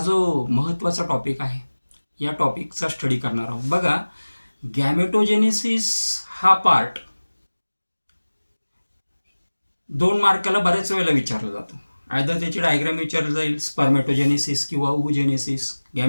महत्त्वाचा टॉपिक आहे या टॉपिकचा स्टडी करणार आहोत. बघा, गॅमेटोजेनेसिस हा पार्ट 2 मार्काला बऱ्याच वेळेला विचारला जातो. आयदर त्याची डायग्राम विचारली जाईल, स्पर्मेटोजेनेसिस किंवा ओव्हुजेनेसिस.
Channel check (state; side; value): inverted; both; correlation -1.00